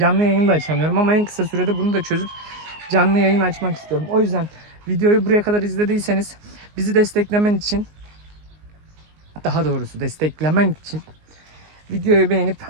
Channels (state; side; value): late; left; 19 ms